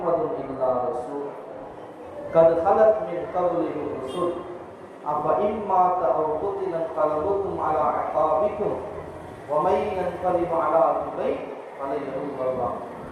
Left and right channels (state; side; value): identical; both; correlation 1.00